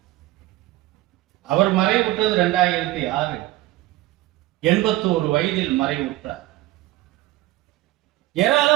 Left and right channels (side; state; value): left; quieter; 17.4 dB